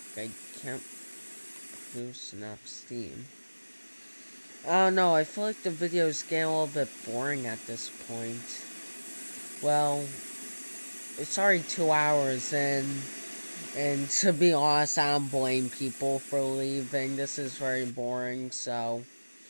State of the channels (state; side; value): inverted; both; correlation -1.00